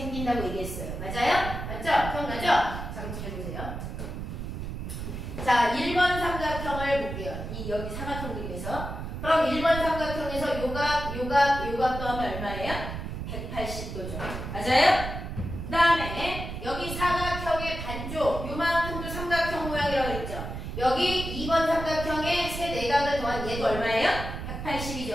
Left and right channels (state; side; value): noise; right; rumble, 6 dB below the sound